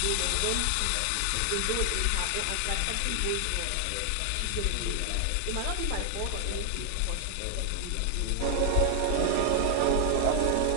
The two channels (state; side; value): different; both; correlation 0.00